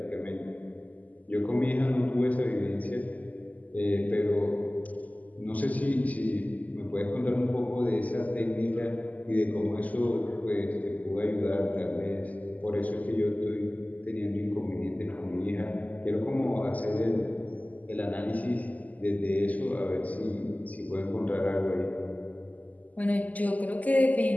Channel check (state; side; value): late; right; 0.077 ms